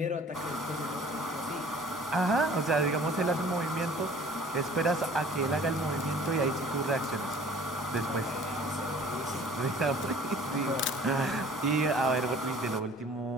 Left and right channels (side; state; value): both; normal; correlation 0.50